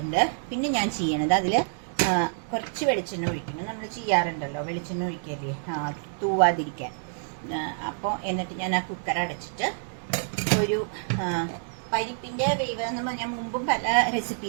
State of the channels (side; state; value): left; silent; digital silence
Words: പിന്നെ ഞാൻ ചെയ്യണത് അതിൽ കുറച്ച് വെളിച്ചെണ്ണ ഒഴിക്കണം. നമ്മൾ ചെയ്യാറുണ്ടല്ലോ വെളിച്ചെണ്ണ ഒഴിക്കല്ലേ, തൂവാതിരിക്കാൻ. അപ്പോൾ എന്നിട്ട് ഞാൻ ആ കുക്കർ അടച്ചിട്ട് ഒരു പരിപ്പിന്റെ വേവ് എന്ന് ഞാൻ മുമ്പും പല